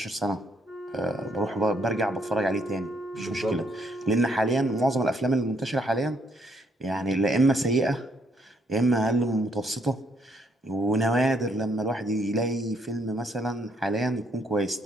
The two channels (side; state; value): both; normal; correlation 0.71